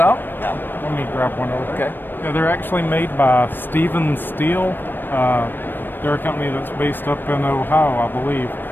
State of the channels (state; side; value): late; right; 0.094 ms